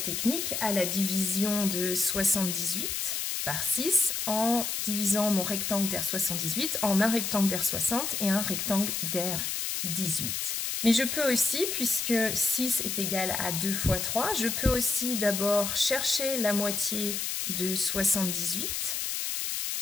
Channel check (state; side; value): noise; left; hiss, 2 dB below the sound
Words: technique à la division de 78 par 6 en divisant mon rectangle d'aire 78 en un rectangle d'aire 60 et un rectangle d'aire 18. Mais je peux aussi, puisque 6 est égal à 2 fois 3, je peux aussi d'abord chercher la moitié de 78,